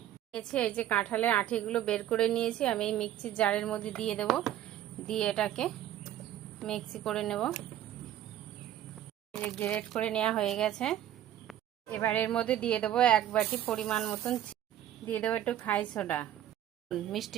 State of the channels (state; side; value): quieter; left; 12.0 dB